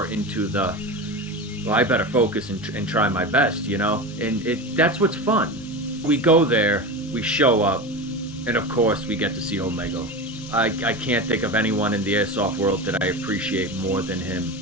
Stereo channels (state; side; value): normal; both; correlation 0.25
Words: into the well, I better focus and try my best, you know? And that's what's fun. We go there, we show up, and of course we get to see Omega. I can't think of anyone in the airsoft world that I appreciate more than him